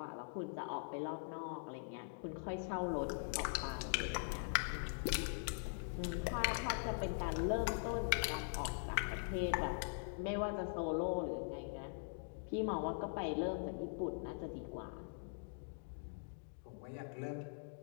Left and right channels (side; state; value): right; silent; digital silence